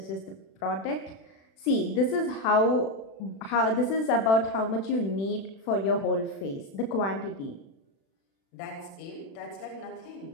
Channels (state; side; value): late; right; 36 ms